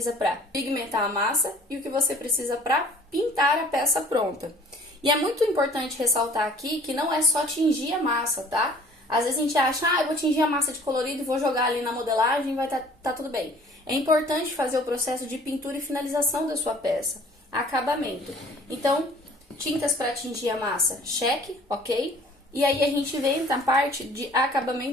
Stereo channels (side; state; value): both; normal; correlation 0.51